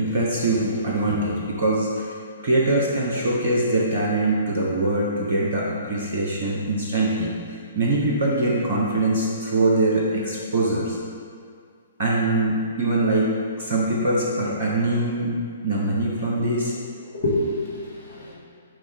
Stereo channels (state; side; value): inverted; both; correlation -0.52